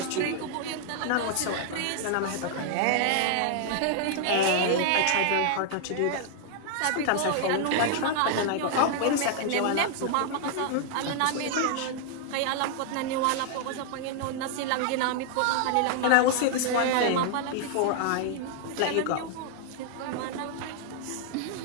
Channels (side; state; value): both; different; correlation 0.00